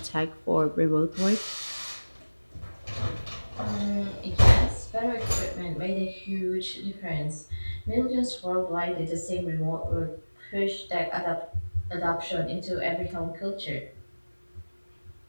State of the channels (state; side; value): inverted; both; correlation -1.00